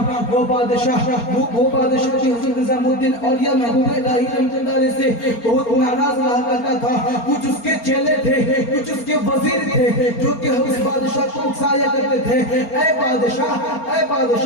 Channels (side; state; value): right; late; 4.3 ms